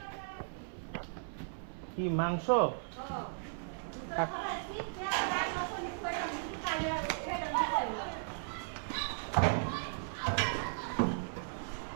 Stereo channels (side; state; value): left; silent; 54 dB below the other